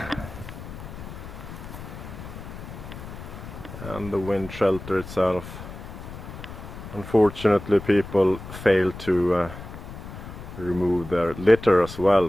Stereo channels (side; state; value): left; noise; rumble, 12 dB below the sound